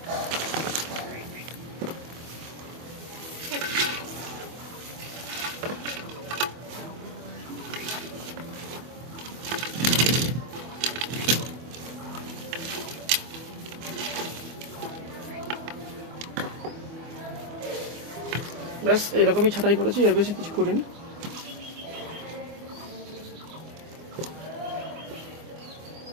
ব্যাস এরকমই ছাঁটাই করেছি, এর বেশি কিছু করিনি।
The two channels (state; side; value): late; left; 24 ms